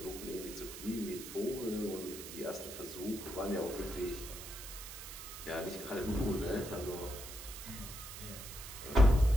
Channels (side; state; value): right; noise; hiss, 11 dB below the sound